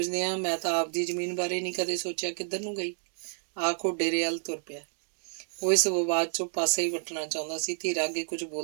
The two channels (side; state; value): left; silent; 58 dB below the other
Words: ਆ, ਮੈਂ ਤਾਂ ਆਪਦੀ ਜ਼ਮੀਨ ਬਾਰੇ ਨਹੀਂ ਕਦੇ ਸੋਚਿਆ ਕਿੱਧਰ ਨੂੰ ਗਈ। ਆਖੋ ਡੇਰੇ ਵੱਲ ਤੁਰ ਪਿਆ। ਉਹ ਇਸ ਵਿਵਾਦ 'ਚੋਂ ਪਾਸੇ ਹੀ ਵੱਟਣਾ ਚਾਹੁੰਦਾ ਸੀ। ਧੀਰਾ ਅੱਗੇ ਕੁਝ